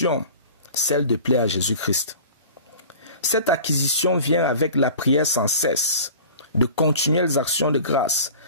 celle de plaire à Jésus-Christ. Cette acquisition vient avec la prière sans cesse, de continuelles actions de grâce,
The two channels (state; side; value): inverted; both; correlation -0.41